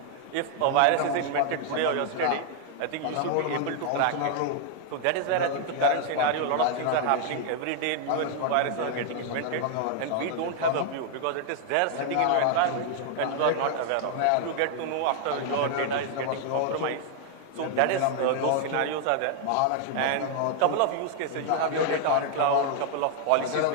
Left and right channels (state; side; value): different; both; correlation 0.00